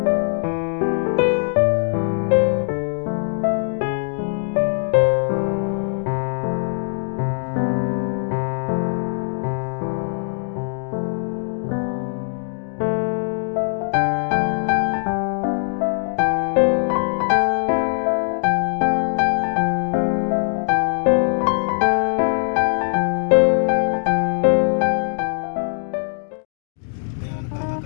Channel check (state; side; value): silent; right; digital silence